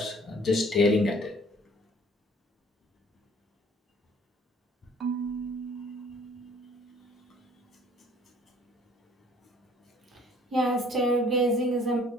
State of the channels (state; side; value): normal; both; correlation 0.56